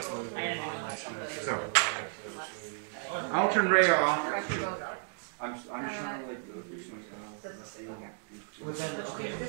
So, I'll turn Ray off. Pressure goes up. I'm just trying to like go through some But then, okay,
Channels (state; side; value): silent; left; digital silence